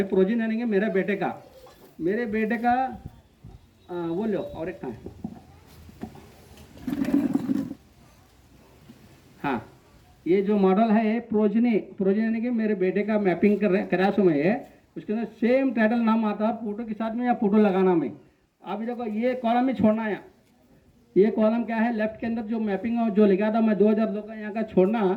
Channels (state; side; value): identical; both; correlation 1.00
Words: प्रोजेनी यानी कि मेरे बेटे का वो लो, और एक कहाँ है, हाँ ये जो मॉडल है प्रोजेनी यानी कि मेरे बेटे का मैपिंग करा सो मैं, उसके अंदर सेम टाइटल नाम आता है फोटो के साथ में या फोटो लगाना में। अभी देखो ये कॉलम में छोड़ना है, ये कॉलम क्या है लेफ्ट के अंदर जो मैपिंग जो लिखा था मैं 2002 का यहाँ का छोड़ना,